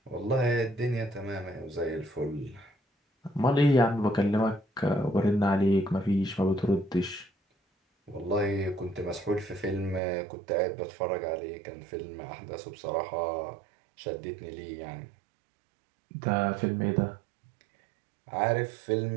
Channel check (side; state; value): left; drops out; at 10.0 s